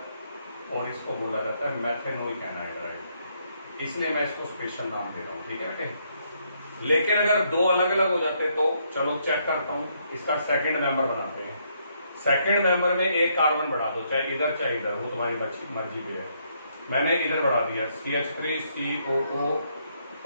और इसको बोला जाता है मेथेनोइक एनहाइड्राइड। इसलिए मैं इसको स्पेशल नाम दे रहा हूँ, ठीक है बेटे। लेकिन अगर 2 अलग अलग हो जाते तो चलो चेक करता हूँ, इसका सेकंड मेंबर बनाते हैं। सेकंड मेंबर में एक कार्बन बढ़ा दो, चाहे इधर चाहे इधर, वो तुम्हारी मर्जी पे है। मैंने इधर बढ़ा दिया CH3 COO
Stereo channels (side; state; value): both; inverted; correlation -0.73